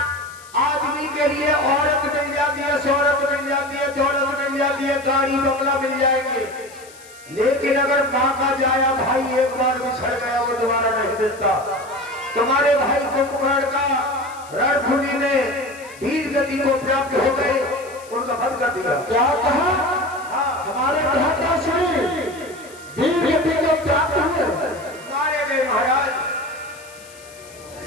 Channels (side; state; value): left; noise; hiss, 21 dB below the sound